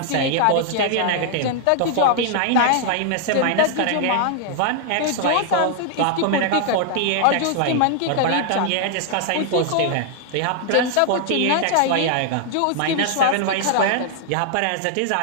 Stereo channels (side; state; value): both; different; correlation 0.00